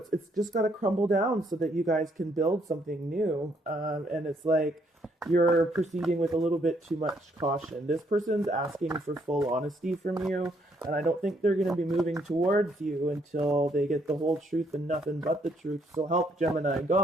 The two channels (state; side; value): normal; both; correlation 0.70